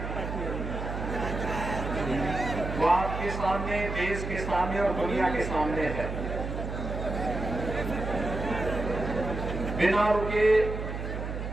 वो आपके सामने, देश के सामने और दुनिया के सामने है। बिना रुके,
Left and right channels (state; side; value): noise; right; hum, 5 dB below the sound